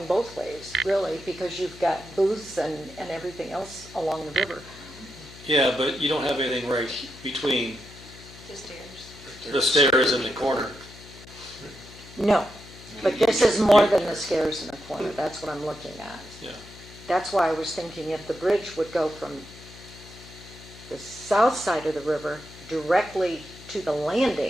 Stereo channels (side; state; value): left; noise; hum, 18 dB below the sound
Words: both ways, really, because you've got booths and everything else along the river. yeah, but you don't have anything right between The stairs. the stairs and the corner. No, but this is more than the stairs in the corner, that's what I'm looking at. Yeah. That's why I was thinking if the bridge would go from the south side of the river directly to the